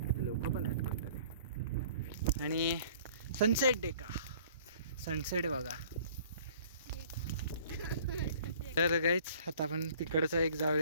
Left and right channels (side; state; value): both; inverted; correlation -0.52